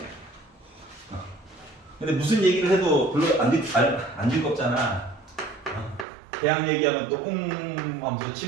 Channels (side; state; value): left; drops out; at 6.1 s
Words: 근데 무슨 얘기를 해도 별로 안 즐겁잖아. 대학 얘기하면 또 하면서